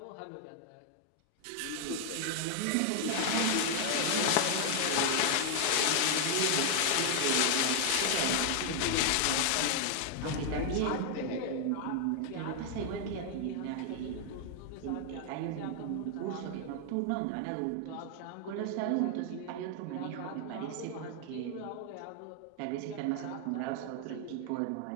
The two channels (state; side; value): different; both; correlation 0.00